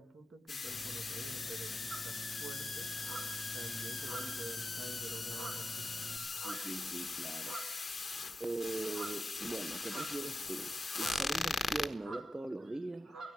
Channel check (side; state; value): both; normal; correlation 0.89